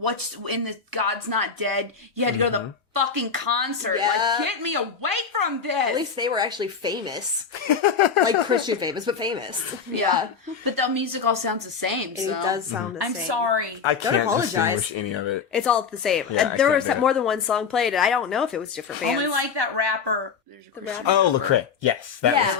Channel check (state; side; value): quieter; right; 6.0 dB